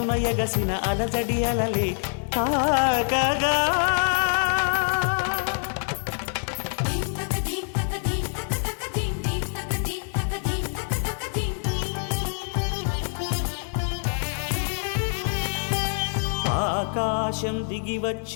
ఎగసిన అలజడి అలలే తాకగా. ఆకాశం దిగి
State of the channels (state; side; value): silent; right; 58 dB below the other